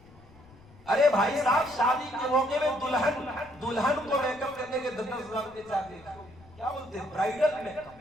ارے بھائی صاحب، شادی کے موقع میں دلہن کو میک اپ کرنے کے 10,000 روپے چاہتے ہیں، کیا بولتے ہیں؟ Bridal make up,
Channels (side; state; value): left; noise; rumble, 24 dB below the sound